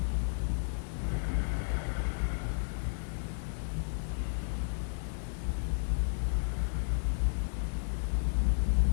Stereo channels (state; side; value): silent; right; 56 dB below the other